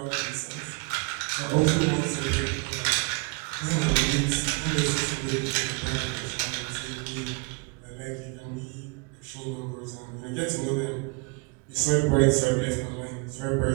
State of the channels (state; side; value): quieter; left; 31.6 dB